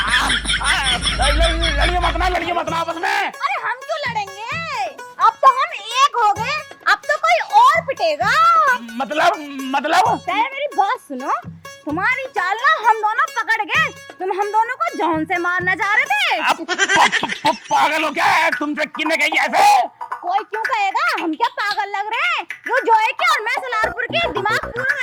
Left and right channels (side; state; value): both; identical; correlation 1.00